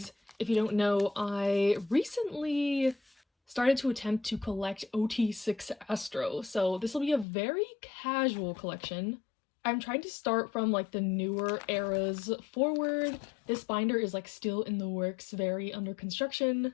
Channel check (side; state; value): right; drops out; at 7.2 s